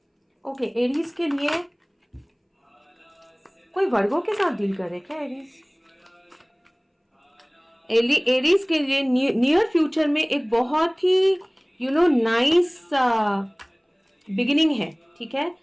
ओके, एरीज के लिए कोई वर्गों के साथ डील कर रहे क्या एरीज? एरीज के लिए नियर फ्यूचर में एक बहुत ही नाइस बिगिनिंग है, ठीक है,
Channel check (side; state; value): both; identical; correlation 1.00